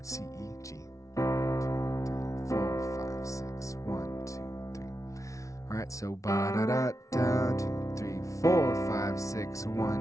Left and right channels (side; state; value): right; late; 0.15 ms